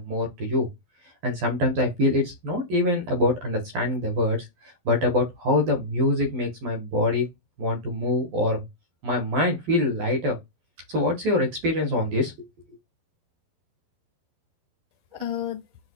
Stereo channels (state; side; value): late; left; 12 ms